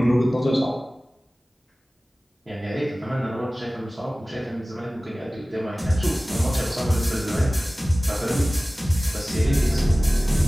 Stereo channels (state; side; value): normal; both; correlation 0.97